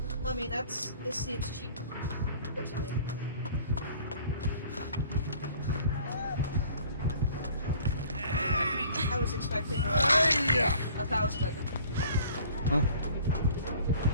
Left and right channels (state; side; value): inverted; both; correlation -0.51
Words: I mean, this seems cheap to me. I was expecting 1,000 at them. Huh?